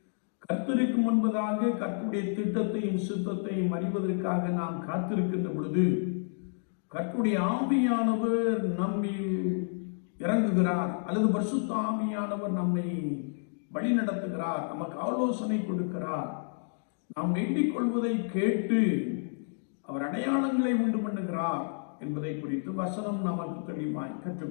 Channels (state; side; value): silent; right; digital silence